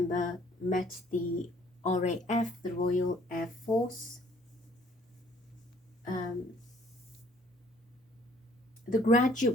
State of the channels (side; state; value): both; normal; correlation 0.60